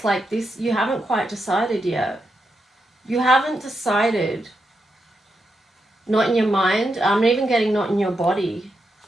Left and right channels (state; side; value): normal; both; correlation 0.84